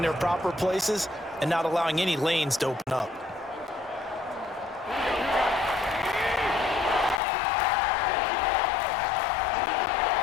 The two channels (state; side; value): drops out; right; at 7.2 s